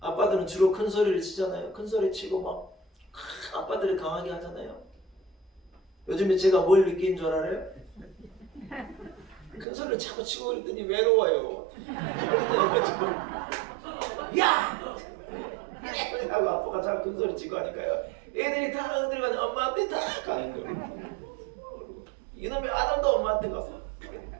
아빠들은 주로 큰 소리를 치잖아요. 큰 소리 치고 막 아빠들이 강하게 하잖아요. 요즘에 제가 뭘 느낀 줄 알아요? 큰 소리를 자꾸 치고 그랬더니 외로워요. 야! 하고 아빠가 자꾸 큰 소리 치고 하니까요, 애들이 다 들어가서 엄마한테 다 가는 거예요. 이놈의 아담도 엄마한테 가서.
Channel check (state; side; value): drops out; left; at 9.7 s